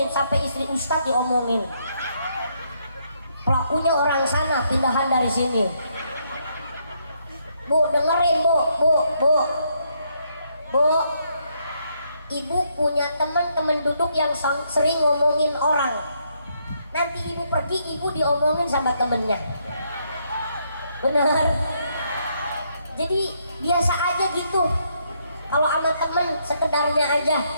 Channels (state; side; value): inverted; both; correlation -0.74